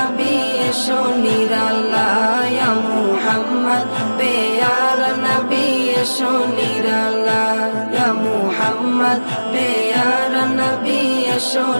এসো নিরালা ইয়া মুহাম্মদ প্যারা নবী এসো নিরালা ইয়া মুহাম্মদ প্যারা নবী এসো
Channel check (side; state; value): both; inverted; correlation -1.00